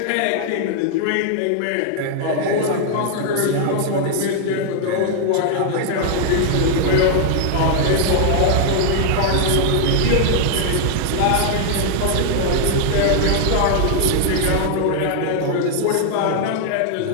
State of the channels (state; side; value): different; both; correlation 0.00